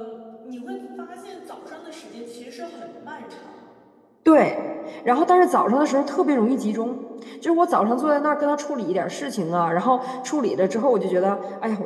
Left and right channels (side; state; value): both; identical; correlation 1.00